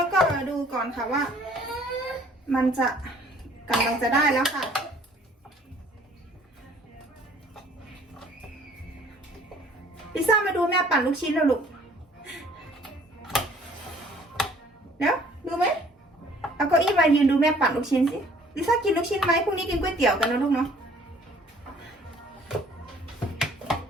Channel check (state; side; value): normal; both; correlation 0.56